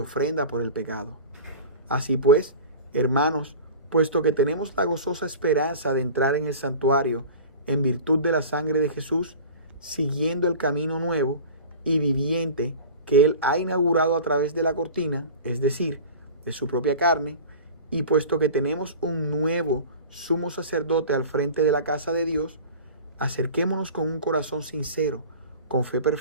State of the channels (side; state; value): both; inverted; correlation -0.36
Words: por el pecado. Así pues, hermanos, puesto que tenemos la gozosa esperanza de entrar en el santuario en virtud de la sangre de Jesús, siguiendo el camino nuevo y viviente que Él ha inaugurado a través de la cortina, es decir, de su propia carne, y puesto que tenemos un nuevo sumo sacerdote al frente de la casa de Dios, acerquémonos con un corazón sincero, con fe